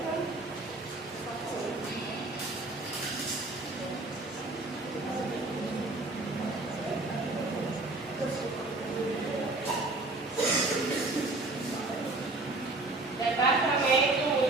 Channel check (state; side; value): quieter; left; 3.1 dB